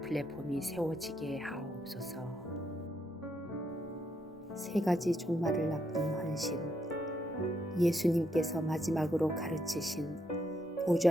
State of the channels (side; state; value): both; normal; correlation 0.78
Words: 세워지게 하옵소서. 세 가지 종말을 앞둔 헌신, 예수님께서 마지막으로 가르치신